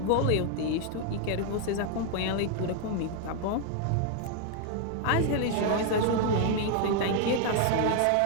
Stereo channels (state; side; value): different; both; correlation 0.00